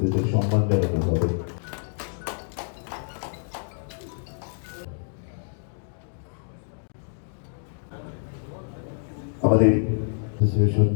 সম্মান জানানো হবে। আমাদের অ্যাসোসিয়েশন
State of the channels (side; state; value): right; silent; 60 dB below the other